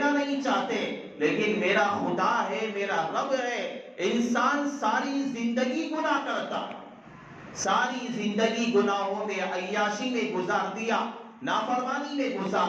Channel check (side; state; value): both; identical; correlation 1.00